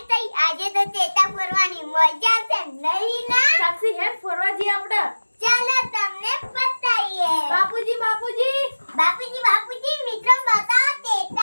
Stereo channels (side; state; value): both; inverted; correlation -1.00